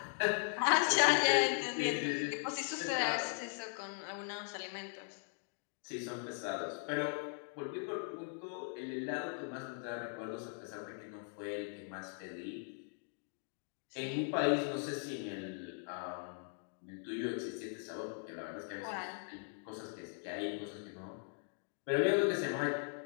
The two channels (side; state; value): right; silent; 52 dB below the other